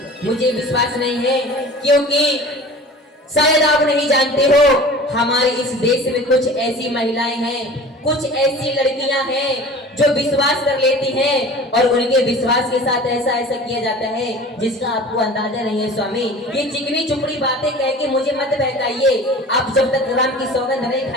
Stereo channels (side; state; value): both; normal; correlation 0.41